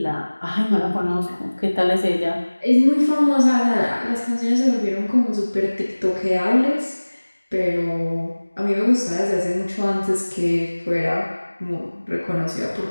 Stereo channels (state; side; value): inverted; both; correlation -1.00